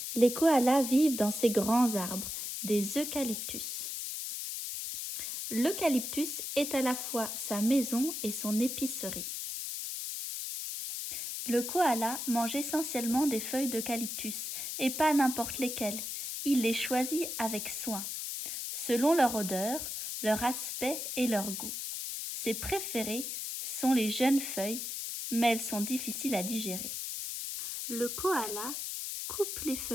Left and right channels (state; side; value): noise; left; hiss, 5 dB below the sound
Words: Les koalas vivent dans ces grands arbres, des eucalyptus. L'eucalyptus est à la fois sa maison et son épicerie. Le koala mange essentiellement des feuilles d'eucalyptus, et pas n'importe lesquelles. Il les choisit avec soin, selon leur odeur, leur aspect et leur goût. Ses préférées sont les jeunes feuilles, mais elles sont difficiles à digérer. Le koala coupe les